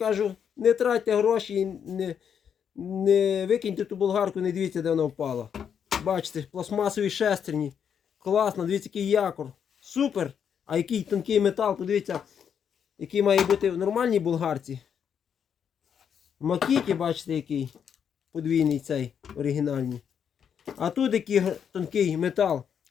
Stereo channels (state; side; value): quieter; right; 7.8 dB